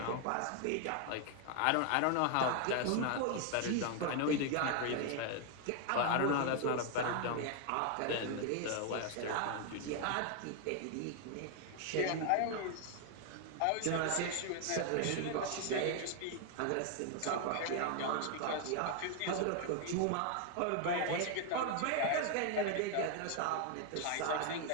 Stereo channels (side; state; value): both; different; correlation 0.00